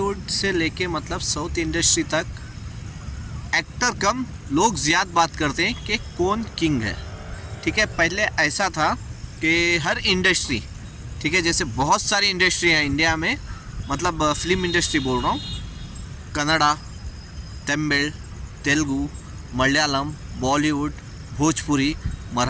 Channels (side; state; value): both; identical; correlation 1.00